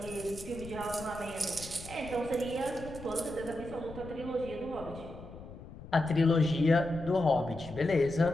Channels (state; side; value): noise; left; rumble, 14 dB below the sound